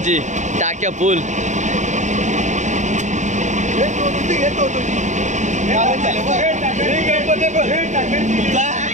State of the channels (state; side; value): late; left; 0.35 ms